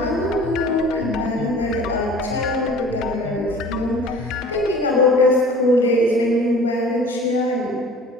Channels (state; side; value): normal; both; correlation 0.45